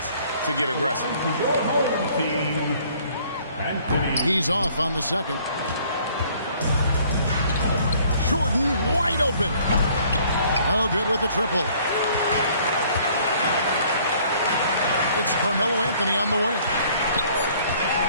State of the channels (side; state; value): both; inverted; correlation -0.58